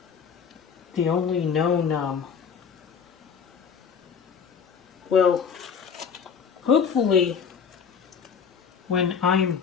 known well, hopefully when I'm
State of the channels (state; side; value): quieter; right; 6.7 dB